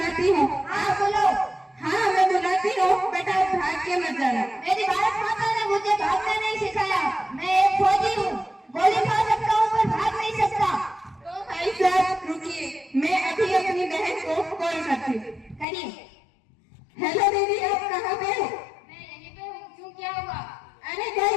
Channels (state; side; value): drops out; right; at 15.7 s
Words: हूँ। हाँ बोलो। हाँ मैं बुलाती हूँ, बेटा भाग के मत जाना। मेरी भारत माता ने मुझे भागना नहीं सिखाया। मैं एक फौजी हूँ, गोली खा सकता हूँ पर भाग नहीं सकता। तो भाई साहब रुकिए, मैं अभी अपनी बहन को कॉल करती हूँ। करिए। हेलो दीदी, आप कहाँ पे हो? मैं यहीं पे हूँ। क्यों, क्या हुआ? अरे कोई